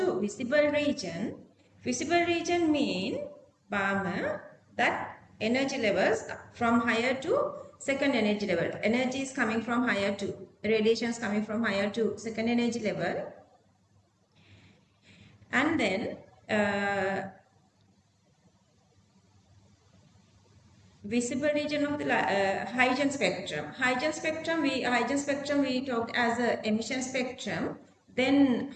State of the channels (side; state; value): both; identical; correlation 1.00